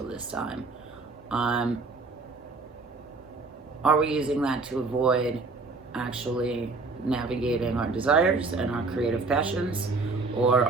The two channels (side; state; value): left; quieter; 3.8 dB